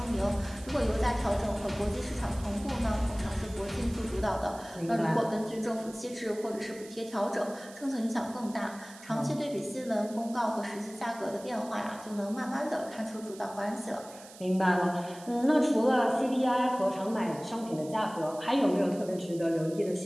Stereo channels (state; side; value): noise; right; hiss, 19 dB below the sound